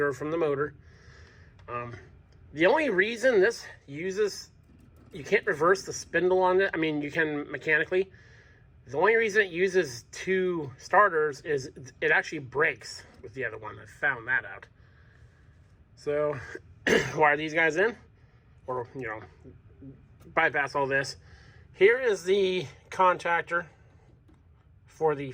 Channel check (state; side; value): identical; both; correlation 1.00